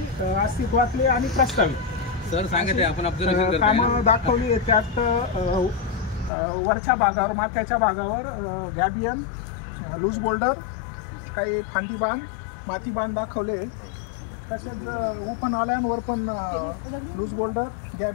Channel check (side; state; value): right; drops out; at 6.3 s